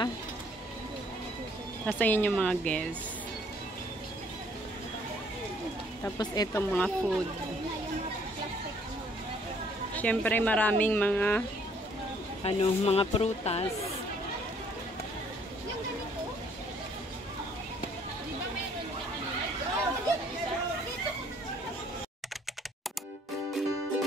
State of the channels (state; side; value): normal; both; correlation 0.62